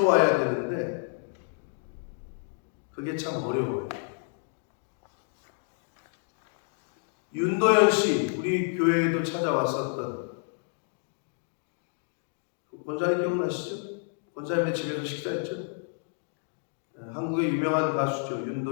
와야 되는데 그게 참 어려워요. 윤도현 씨, 우리 교회에도 찾아왔었던 권사님 기억나시죠? 권사님의 집에서 식사했죠? 한국의 유명한 가수죠.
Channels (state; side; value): silent; right; 58 dB below the other